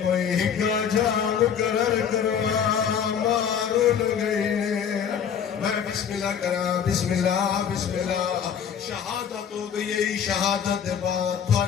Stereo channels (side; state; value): right; quieter; 7.9 dB